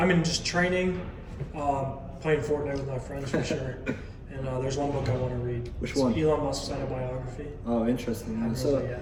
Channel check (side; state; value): both; identical; correlation 1.00